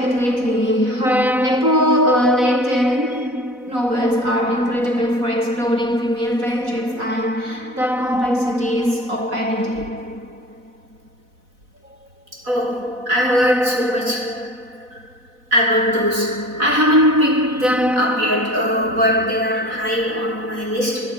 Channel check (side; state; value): left; late; 4.0 ms